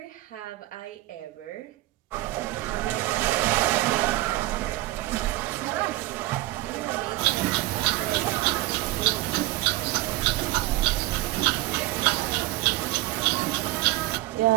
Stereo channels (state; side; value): quieter; left; 18.0 dB